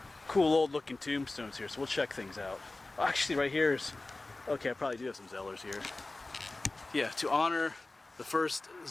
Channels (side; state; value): right; quieter; 3.1 dB